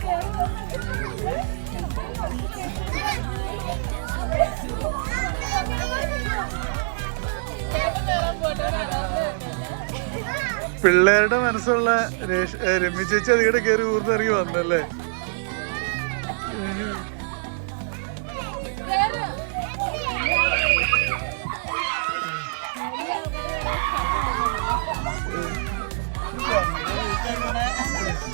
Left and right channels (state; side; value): silent; left; 61 dB below the other